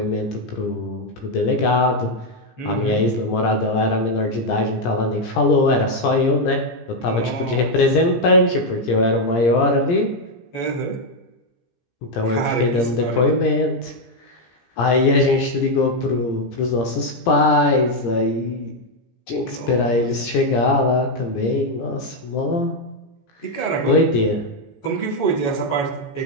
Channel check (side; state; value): right; late; 17 ms